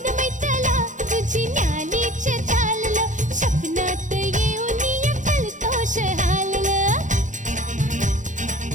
मैत्याला तुझी न्यालीच चाललं, स्वप्नात येऊन फलतोष हाललं.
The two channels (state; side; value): late; left; 0.36 ms